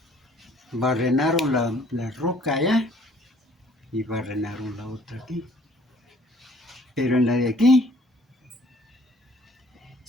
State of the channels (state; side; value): normal; both; correlation 0.58